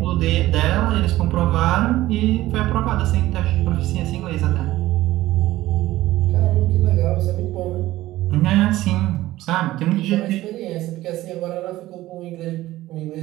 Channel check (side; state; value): left; quieter; 16.2 dB